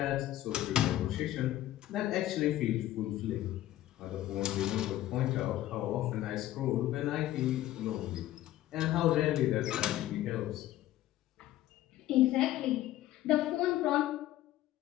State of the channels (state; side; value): quieter; right; 14.3 dB